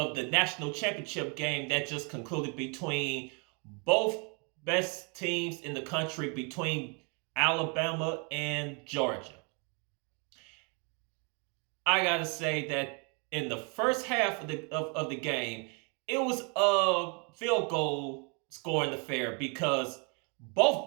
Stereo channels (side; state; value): left; quieter; 34.7 dB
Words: the national championship game that just concluded between both best teams in the country, between Alabama and Georgia. I gotta say that in the first half of the game, it was a field goal scoring affair because